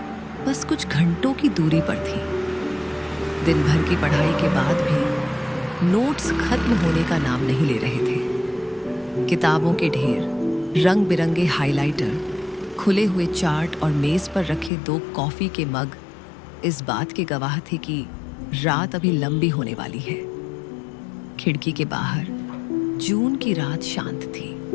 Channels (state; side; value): drops out; right; at 14.7 s